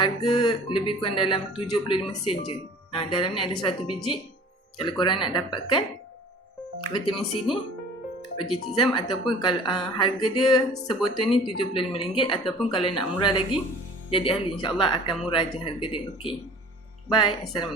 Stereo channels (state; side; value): normal; both; correlation 0.46